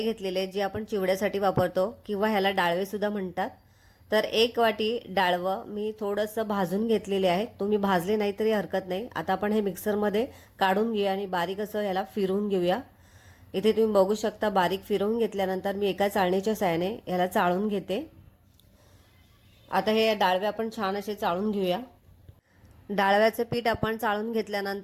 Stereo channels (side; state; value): both; identical; correlation 1.00